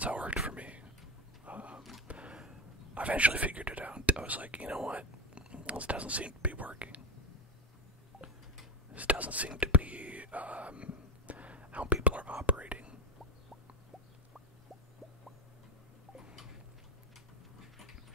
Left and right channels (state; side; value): normal; both; correlation 0.14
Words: how it worked for me. I eventually figured it out. I was like, you know what? This doesn't seem to be working. This doesn't seem to be how people are operating.